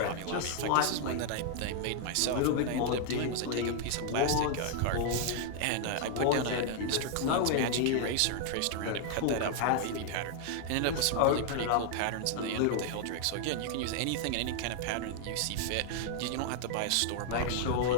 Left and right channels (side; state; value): both; different; correlation 0.00